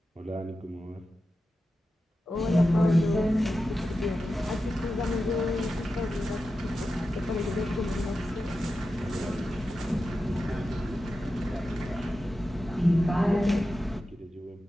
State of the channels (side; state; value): both; normal; correlation 0.92